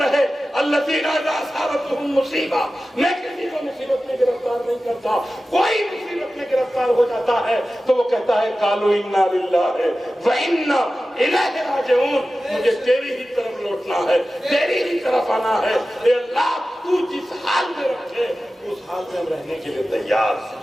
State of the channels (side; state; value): both; normal; correlation 0.95